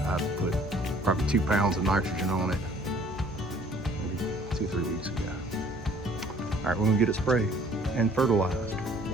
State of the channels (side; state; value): both; normal; correlation 0.56